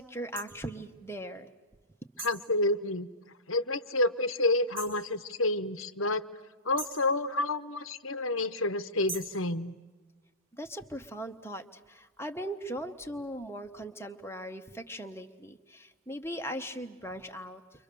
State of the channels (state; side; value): normal; both; correlation -0.19